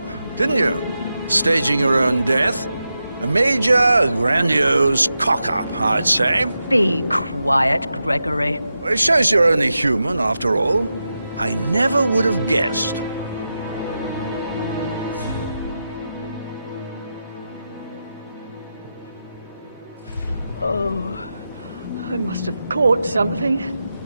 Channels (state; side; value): inverted; both; correlation -0.89